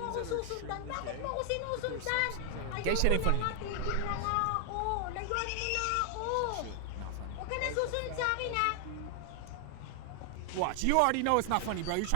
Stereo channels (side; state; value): both; different; correlation 0.00